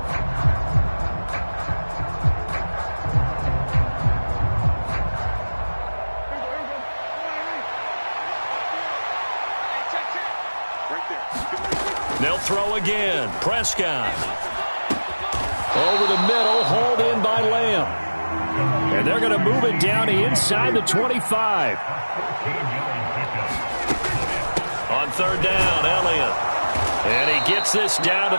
They'll throw again. Prescott. Over the middle, hauled in by Lamb. And they're going to move it down to inside the 25. On third down, Elliott. And he gets this down to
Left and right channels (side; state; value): both; inverted; correlation -1.00